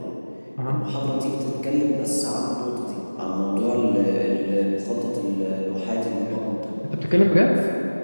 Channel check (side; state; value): both; inverted; correlation -1.00